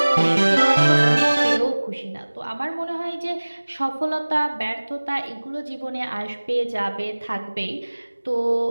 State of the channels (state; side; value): inverted; both; correlation -1.00